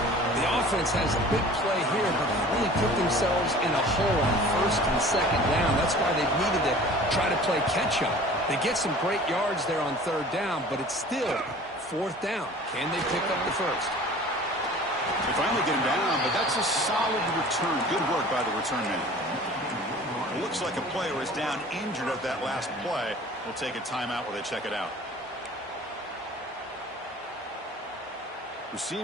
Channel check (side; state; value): both; normal; correlation 0.45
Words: The offense has a big play here, but they really put themselves in a hole on 1st and 2nd down. That's why they've needed to try to play catch-up. They get some great yards there on 3rd down, but it's still 4th down. Can they pick up the first? They finally get him down, but that's a solid return. Good work by the return man. It looks like a player is down injured at that last play. We'll take a timeout while they check it out.